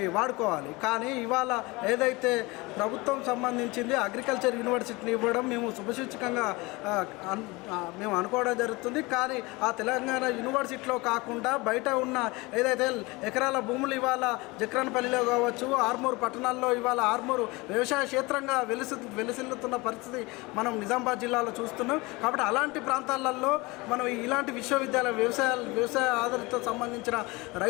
వాడుకోవాలి. కానీ ఇవాళ ఏదైతే ప్రభుత్వం సంబంధించింది అగ్రికల్చర్ యూనివర్సిటీని ఇవ్వడం మేము శుభసూచకంగా మేము అనుకోవడం జరుగుతుంది. కానీ ఆ తెలంగాణ యూనివర్సిటీలో కాకుండా బయట ఉన్న ఏదైతే ఎకరాల భూములు ఇవాళ జక్రాన్పల్లిలో కావచ్చు, ఆర్మూరు పట్టణాల్లో ఇవాళ ఆర్మూరు వ్యవసాయ క్షేత్రంగా వెలిసిల్లుతున్న పరిస్థితి మనం నిజామాబాద్ జిల్లాలో చూస్తున్నాం. కాబట్టి అలాంటి ప్రాంతాలలో మనం ఇలాంటి విశ్వవిద్యాలయ వ్యవసాయ ఆధారిత సంబంధించిన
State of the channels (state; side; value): quieter; right; 23.8 dB